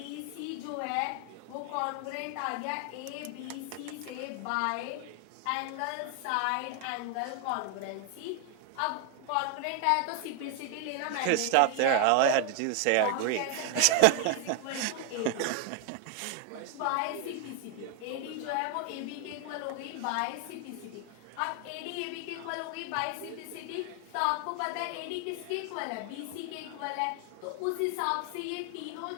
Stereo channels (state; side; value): different; both; correlation 0.00